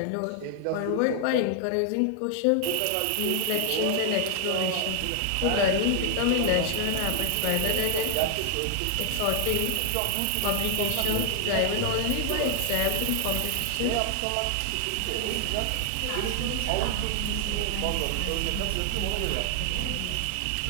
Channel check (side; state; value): both; different; correlation 0.00